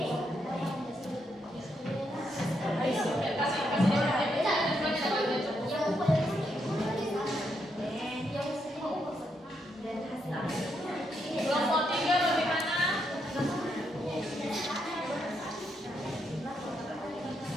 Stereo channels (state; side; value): normal; both; correlation 0.79